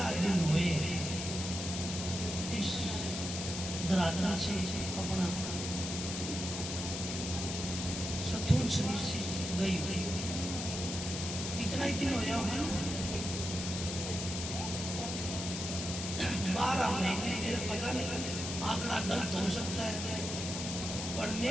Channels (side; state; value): left; noise; hiss, 5 dB below the sound